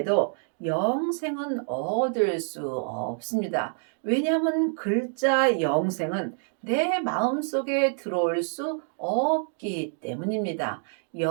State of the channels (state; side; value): silent; left; 57 dB below the other